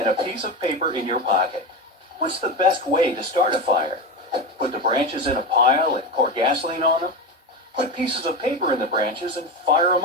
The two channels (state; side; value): normal; both; correlation 0.19